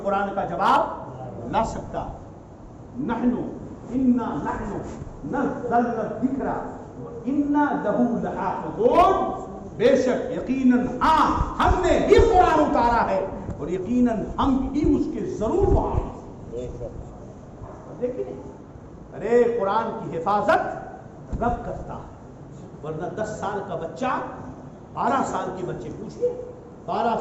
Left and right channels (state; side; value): identical; both; correlation 1.00